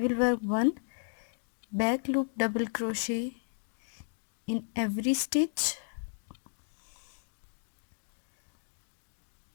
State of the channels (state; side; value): silent; right; digital silence